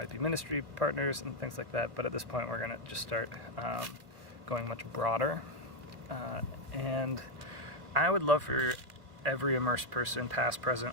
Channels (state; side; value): late; left; 2.2 ms